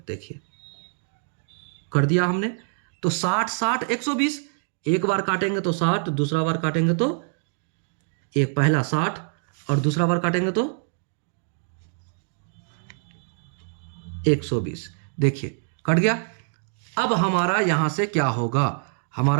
देखिए कर दिया हमने। तो 60 60 120, एक बार काटेंगे तो 60, दूसरा बार काटेंगे तो एक पहला 60 और दूसरा बार काटेंगे तो 120। देखिए कट गया। अब हमारा यहां से क्या होगा,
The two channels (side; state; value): left; silent; digital silence